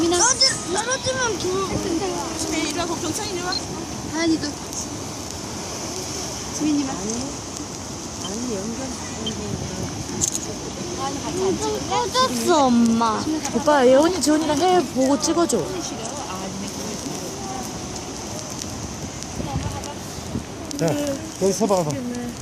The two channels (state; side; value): identical; both; correlation 1.00